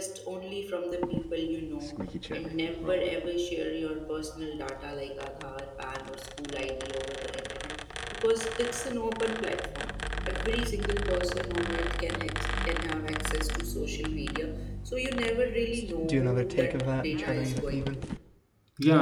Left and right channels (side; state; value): both; identical; correlation 1.00